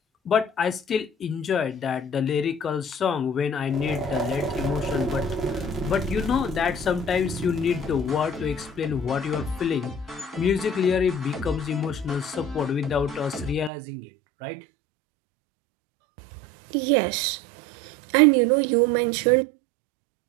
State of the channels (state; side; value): drops out; left; at 13.7 s